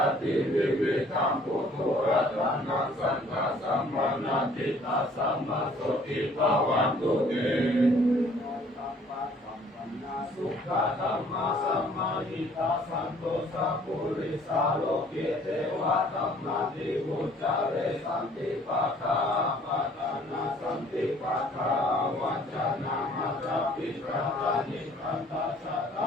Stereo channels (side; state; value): both; normal; correlation 0.57